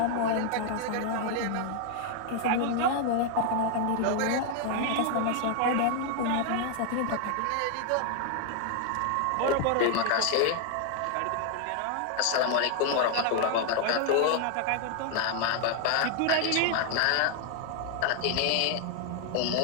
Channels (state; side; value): different; both; correlation 0.00